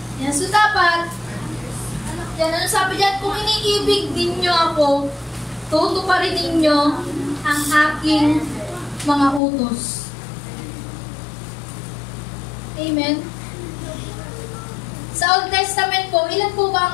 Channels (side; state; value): right; drops out; at 9.4 s